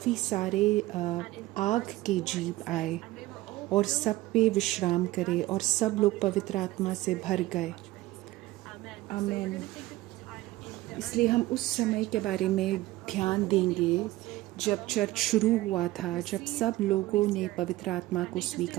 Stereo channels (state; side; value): quieter; left; 17.6 dB